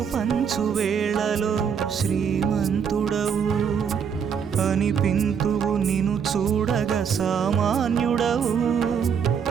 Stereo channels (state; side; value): quieter; left; 7.2 dB